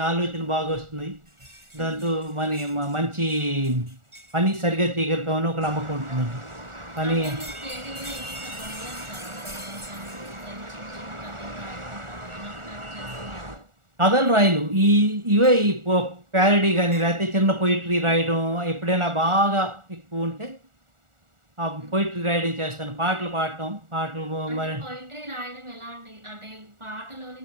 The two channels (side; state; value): left; late; 1.4 ms